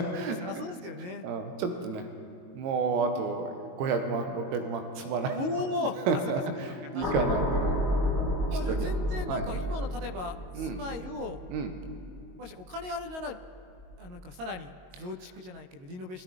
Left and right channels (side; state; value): left; late; 22 ms